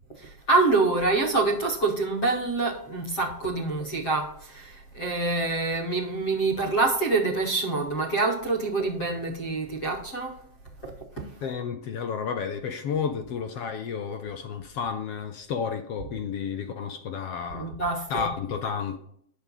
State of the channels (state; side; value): late; right; 7.5 ms